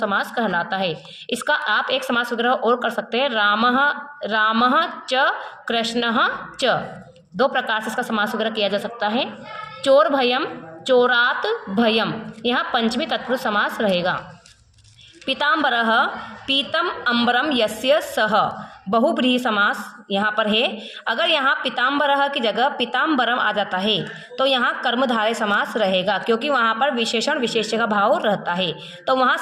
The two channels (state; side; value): identical; both; correlation 1.00